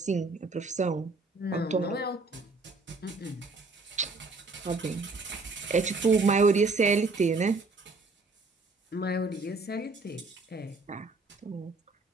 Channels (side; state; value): left; quieter; 3.6 dB